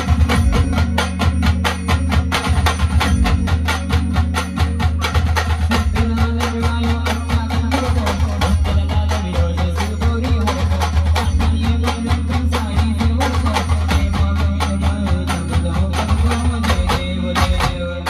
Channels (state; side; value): identical; both; correlation 1.00